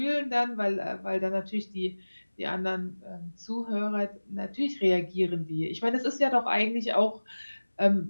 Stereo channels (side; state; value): both; inverted; correlation -1.00